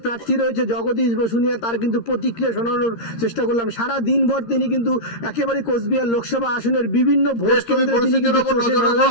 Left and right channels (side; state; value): right; late; 13 ms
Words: প্রার্থী রয়েছে জগদীশ বসুনিয়া, তার কিন্তু প্রতিক্রিয়া শোনানোর চেষ্টা করলাম। সারা দিনভর তিনি কিন্তু একেবারে কোচবিহার লোকসভা আসনের বিভিন্ন ভোট কেন্দ্রে